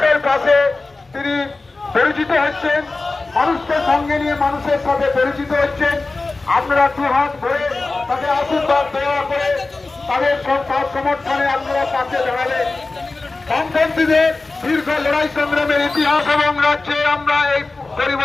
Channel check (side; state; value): right; quieter; 3.5 dB